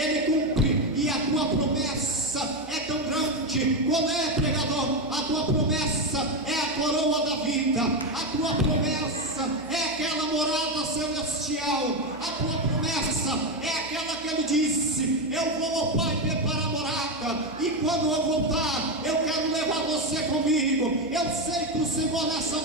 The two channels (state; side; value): noise; right; hum, 22 dB below the sound